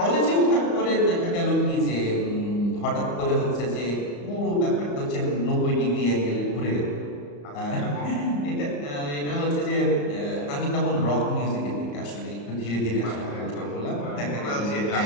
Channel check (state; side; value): late; right; 34 ms